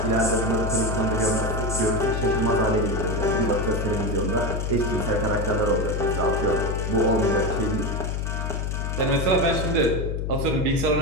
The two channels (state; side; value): noise; left; hum, 2 dB below the sound